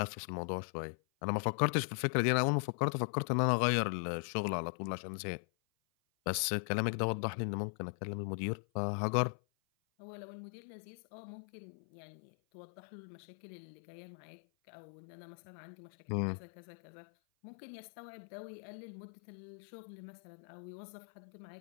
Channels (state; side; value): silent; right; 52 dB below the other